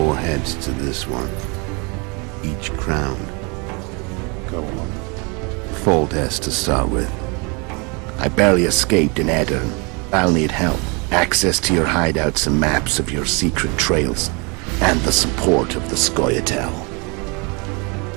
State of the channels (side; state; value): left; quieter; 31.1 dB